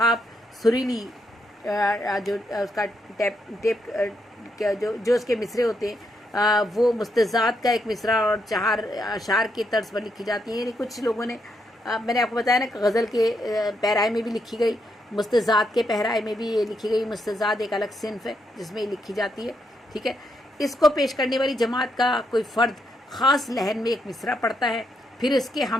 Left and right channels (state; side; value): normal; both; correlation 0.79